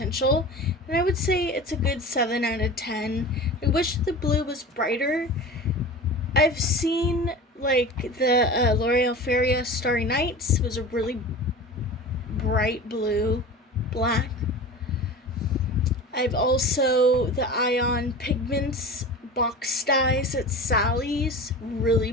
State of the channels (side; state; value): both; normal; correlation 0.34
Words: and I would say it's a good 7 out of 10. I wish the blue was brighter. I've seen like the L'Oreal Feria Starry Nights was a really bright blue, black. I've also the Ion Pigments box dyes at Sally's,